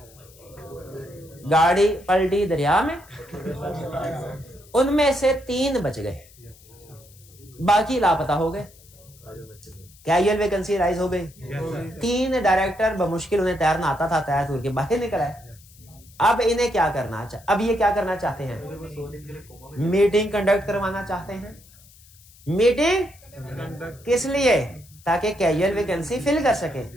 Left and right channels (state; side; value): noise; left; hiss, 25 dB below the sound